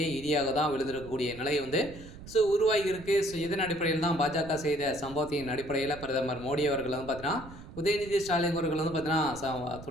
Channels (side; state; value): right; noise; rumble, 15 dB below the sound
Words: இடியாக தான் விழுந்திருக்கக்கூடிய நிலை உருவாகி இருக்கு. இதன் அடிப்படையில் தான் பாஜக செய்த சம்பவத்தின் அடிப்படையில் பிரதமர் மோடி அவர்கள் பார்த்தீங்கன்னா உதயநிதி ஸ்டாலின் அவர்கள் பார்த்தீங்கன்னா